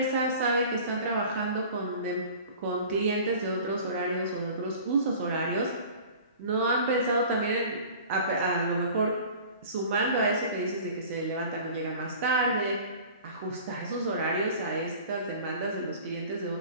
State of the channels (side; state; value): both; inverted; correlation -0.43